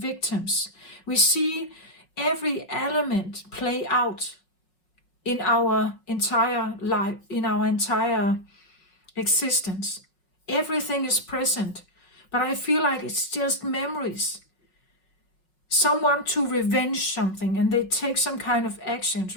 We see every element play out in our entire life, in our entire existence. Everything is present, but I feel like it's just memories. Someone to revenge something, and they take some kind of actions,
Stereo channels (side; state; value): right; late; 5.3 ms